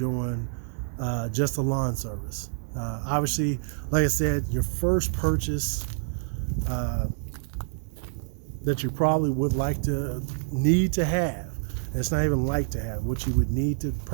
just a lawn service. Obviously, like I said, your first purchase that you probably would need to have, it's not even like to have, what you would need to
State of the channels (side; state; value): left; silent; digital silence